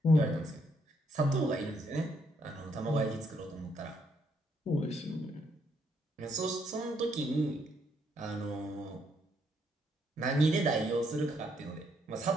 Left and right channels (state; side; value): normal; both; correlation 0.73